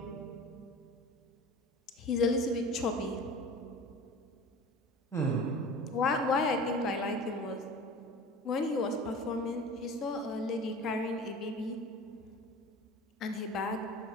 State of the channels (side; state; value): both; normal; correlation 0.38